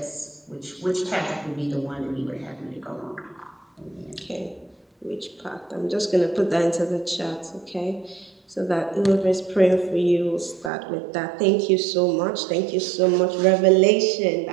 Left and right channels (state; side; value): drops out; left; at 10.7 s